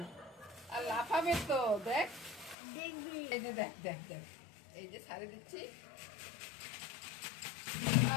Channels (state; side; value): drops out; right; at 2.6 s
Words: আর লাফাবে তো দেখ। এই যে দেখ দেখ দেখ, এই যে ছাড়ে দিচ্ছি।